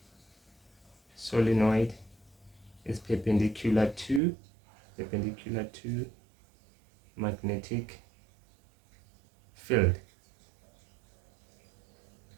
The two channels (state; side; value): drops out; left; at 4.2 s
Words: is perpendicular to magnetic field,